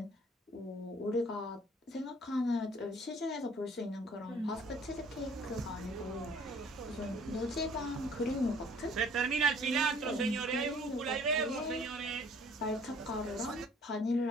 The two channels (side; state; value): both; normal; correlation 0.55